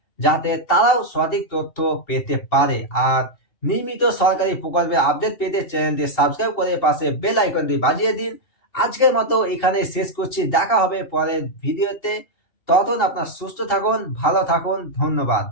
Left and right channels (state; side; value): late; right; 2.7 ms